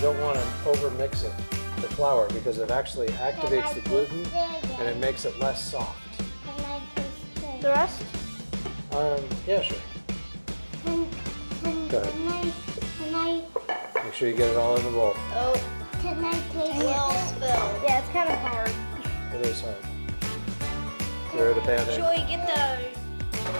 don't want to overmix it, the flour, because it actually activates the gluten and it makes it less soft. Can I taste it? The rest? Yeah, sure. Go ahead. Can I Make sure you get it all in the bowl. Oh, Can I taste well it? spilled. Yeah, it's kind of hard. It is hard. Throw the pan in. Should we get the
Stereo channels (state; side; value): inverted; both; correlation -1.00